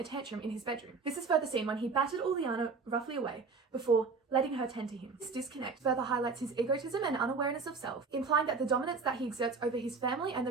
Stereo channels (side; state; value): left; quieter; 4.7 dB